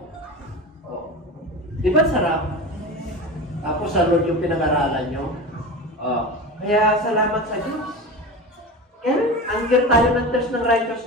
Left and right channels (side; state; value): both; normal; correlation 0.28